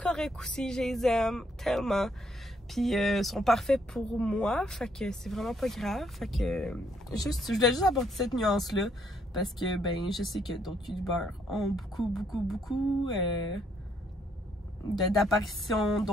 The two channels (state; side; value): normal; both; correlation 0.70